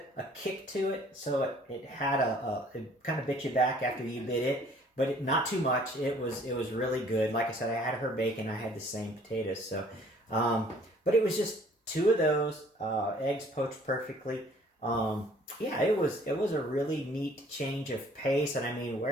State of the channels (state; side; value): normal; both; correlation 0.56